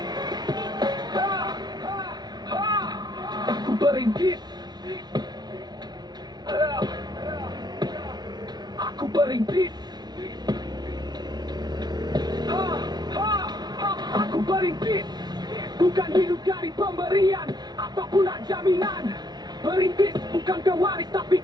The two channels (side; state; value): left; late; 0.20 ms